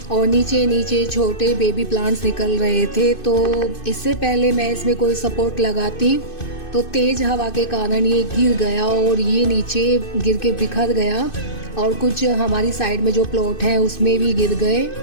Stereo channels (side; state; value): right; late; 2.5 ms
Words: और नीचे नीचे छोटे बेबी प्लांट्स निकल रहे थे। तो इससे पहले मैं इसमें कोई सपोर्ट लगाती तो तेज़ हवा के कारण ये गिर गया और ये नीचे गिर के बिखर गया, और कुछ हमारी साइड में जो प्लॉट है उसमें भी गिर गए।